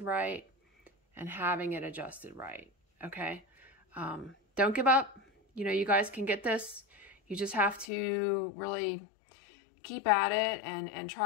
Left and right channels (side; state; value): right; drops out; at 7.9 s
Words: right and having it adjusted right, okay? Don't give up. You know, you guys can get this. You just have to really keep at it and